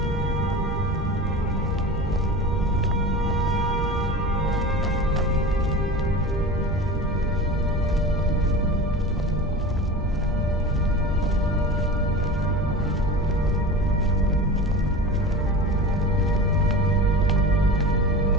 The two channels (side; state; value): both; normal; correlation 0.32